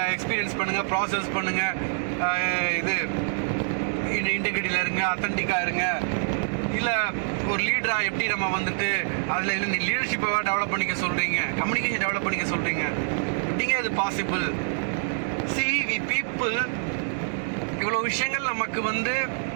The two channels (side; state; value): left; silent; digital silence